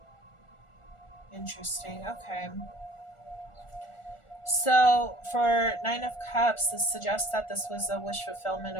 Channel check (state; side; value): late; right; 1.4 ms